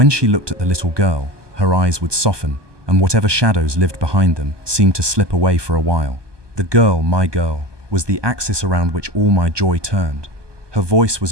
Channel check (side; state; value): left; late; 1.2 ms